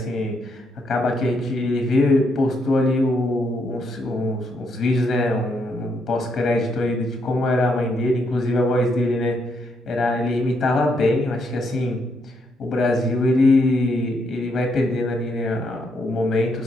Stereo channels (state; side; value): normal; both; correlation 0.76